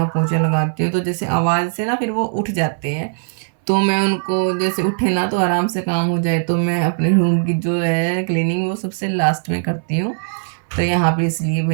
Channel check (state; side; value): silent; left; 63 dB below the other